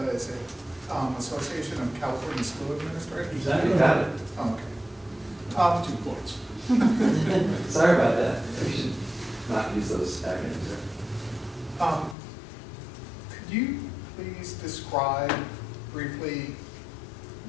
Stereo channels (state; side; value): drops out; right; at 12.2 s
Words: is it Association of California School Administrators? Exactly. You got it. Okay. 2 points. Sorry about that. We should not use those acronyms there. Could you please describe briefly